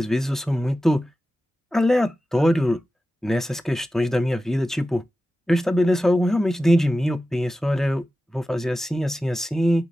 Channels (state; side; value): normal; both; correlation 0.94